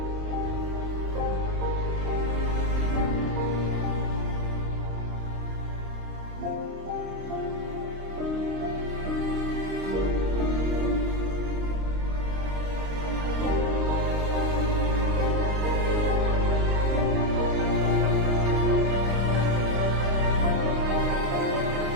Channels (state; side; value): late; left; 26 ms